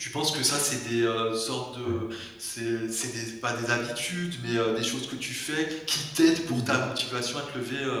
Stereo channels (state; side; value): identical; both; correlation 1.00